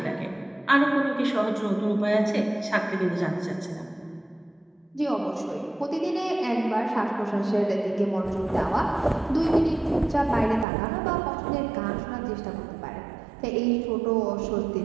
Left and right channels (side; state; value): left; drops out; at 10.7 s